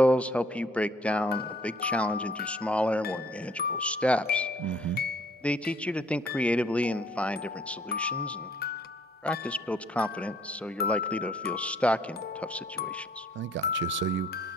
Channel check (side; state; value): both; normal; correlation 0.61